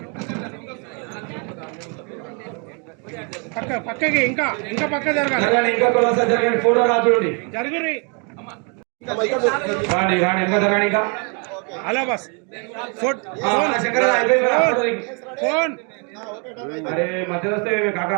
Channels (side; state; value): left; quieter; 36.2 dB